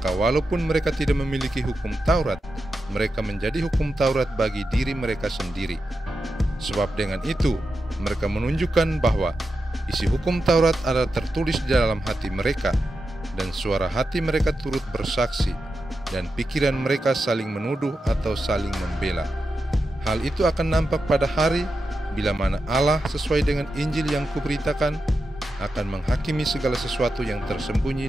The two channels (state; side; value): normal; both; correlation 0.89